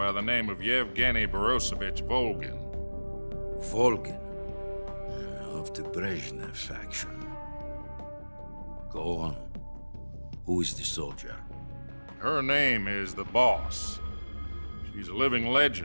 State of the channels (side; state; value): both; inverted; correlation -1.00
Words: the name of Yevgeny Borosovich Volgin. Volgin, of the Brezhnev faction. Go on. Who is the soldier? Her name is the Boss. She's a living